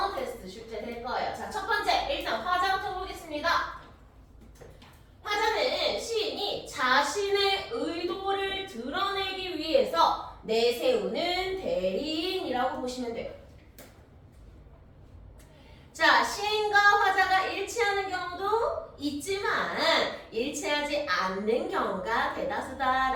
테스트 출제될 거예요. 자, 첫 번째, 일단 화자부터 보겠습니다. 화자는 시인이 자신의 의도를 드러내기 위해서 내세우는 대리인이라고 보시면 돼요. 자, 시인과 화자가 일치하는 경우도 있지만 일치하지 않는 경우가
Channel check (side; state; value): both; identical; correlation 1.00